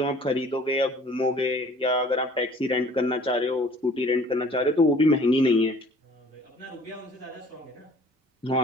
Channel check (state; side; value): normal; both; correlation 0.52